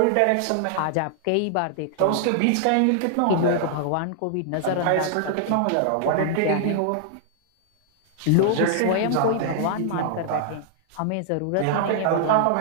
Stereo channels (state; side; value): different; both; correlation -0.01